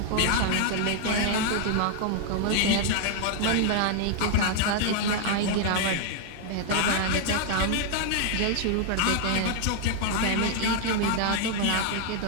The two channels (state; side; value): different; both; correlation 0.00